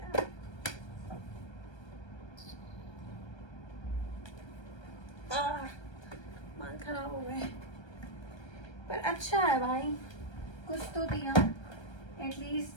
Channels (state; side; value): late; right; 1.3 ms